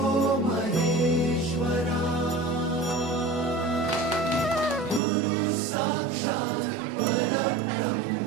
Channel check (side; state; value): left; drops out; at 5.0 s